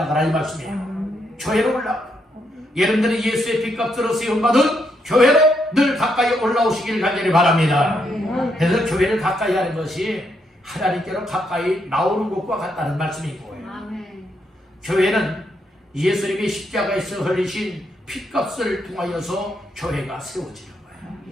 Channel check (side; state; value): both; normal; correlation 0.78